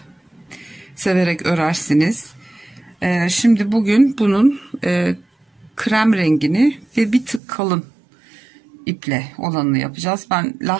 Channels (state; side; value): drops out; left; at 7.4 s